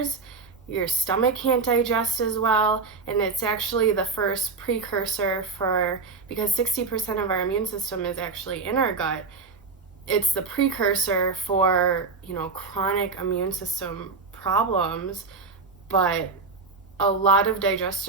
your stomach can't digest as well, and it's actually the first precursor because 60% of our immune system is actually in our gut, it's the precursor for, chronic immune system problems, but a lot of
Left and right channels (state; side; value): quieter; left; 4.4 dB